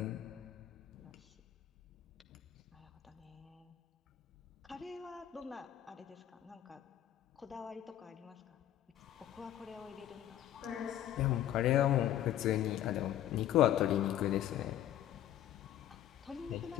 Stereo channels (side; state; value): right; quieter; 11.9 dB